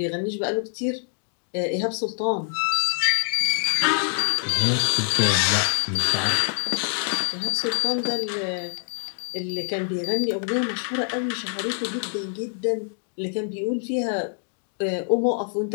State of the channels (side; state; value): right; silent; digital silence